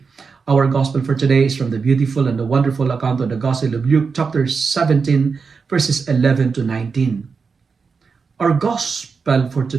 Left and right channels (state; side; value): quieter; left; 5.2 dB